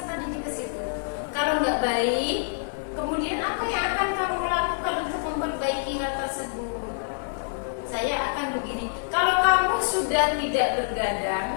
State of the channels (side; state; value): right; silent; digital silence